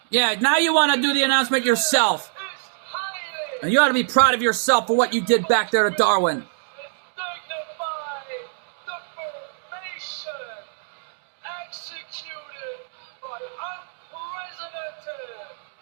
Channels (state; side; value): silent; left; digital silence